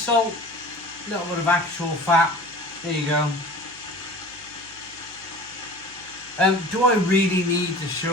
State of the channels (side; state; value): right; noise; hum, 25 dB below the sound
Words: A little bit of actual fat. There you go. Do I really need to